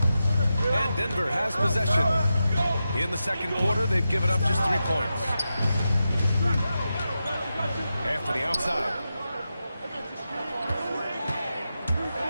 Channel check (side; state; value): both; inverted; correlation -0.90